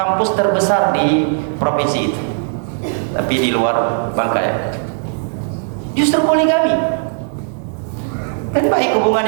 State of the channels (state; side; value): silent; left; 67 dB below the other